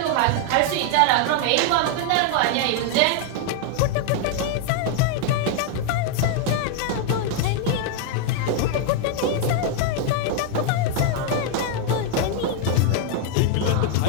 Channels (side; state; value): both; different; correlation 0.00